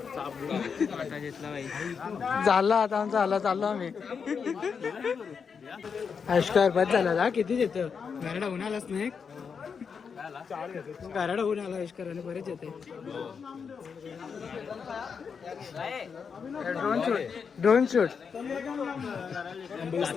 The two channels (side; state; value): right; quieter; 6.1 dB